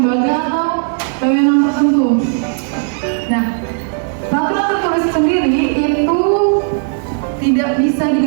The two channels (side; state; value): left; silent; digital silence